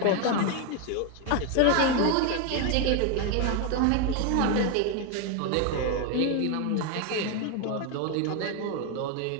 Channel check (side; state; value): both; different; correlation 0.01